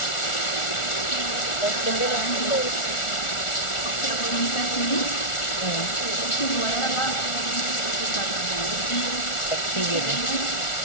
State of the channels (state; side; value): late; right; 1.4 ms